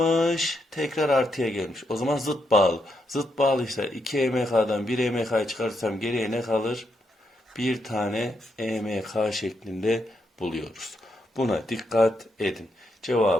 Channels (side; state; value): both; normal; correlation 0.80